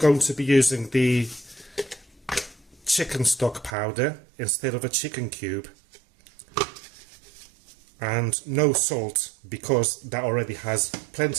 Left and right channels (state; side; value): drops out; left; at 3.8 s